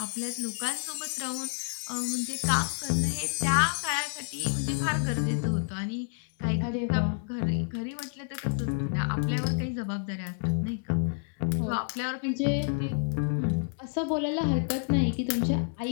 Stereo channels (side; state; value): right; silent; digital silence